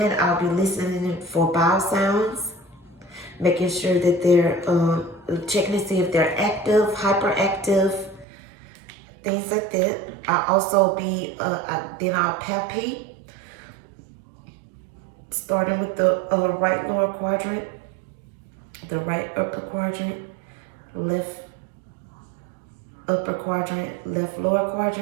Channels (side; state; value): left; drops out; at 8.2 s